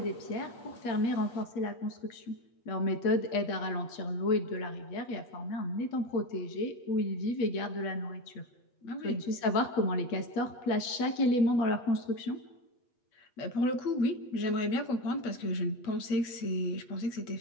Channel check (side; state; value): right; late; 8.3 ms